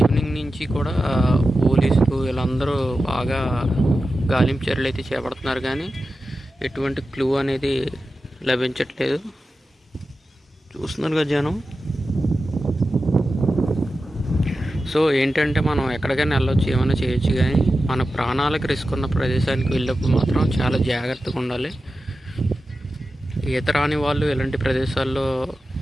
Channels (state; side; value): normal; both; correlation 0.92